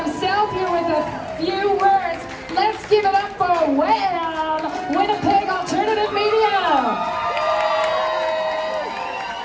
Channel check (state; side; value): identical; both; correlation 1.00